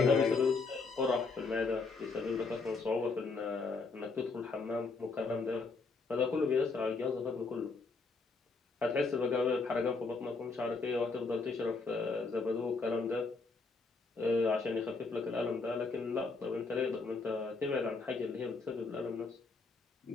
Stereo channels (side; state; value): right; quieter; 4.1 dB